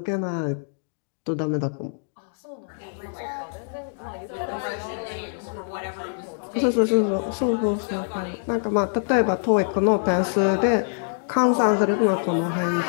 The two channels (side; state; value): right; silent; digital silence